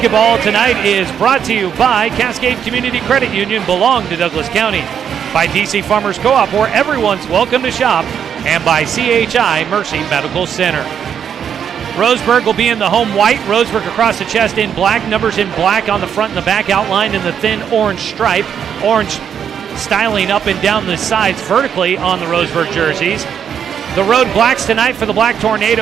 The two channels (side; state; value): left; quieter; 8.2 dB